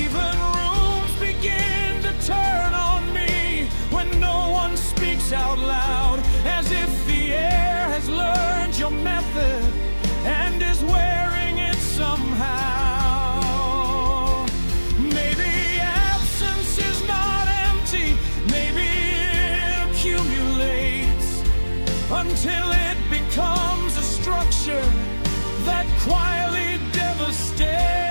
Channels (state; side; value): inverted; both; correlation -1.00